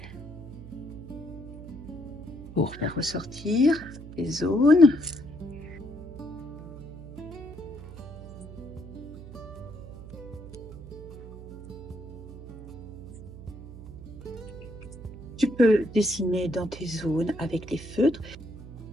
pour faire ressortir les zones. Tu peux dessiner dans tes zones avec les feutres.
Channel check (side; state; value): right; noise; hum, 13 dB below the sound